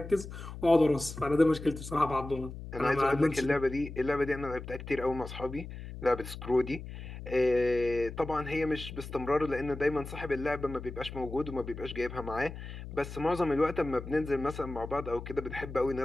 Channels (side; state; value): left; noise; hum, 11 dB below the sound